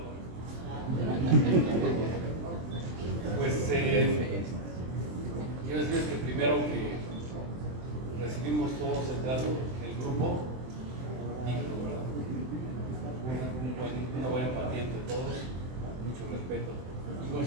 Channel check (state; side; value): late; left; 23 ms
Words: Pues quiero decirles que primero que recibimos todos el trato del grupo digno, ¿verdad? Una buena empatía entre todos, mucho respeto. Y